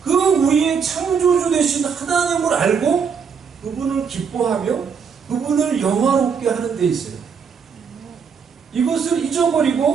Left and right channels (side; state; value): left; quieter; 6.3 dB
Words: 그 우리의 창조주 되신 하나님을 알고 그분을 기뻐하며 그분을 영화롭게 하는 데 있어요. 이것을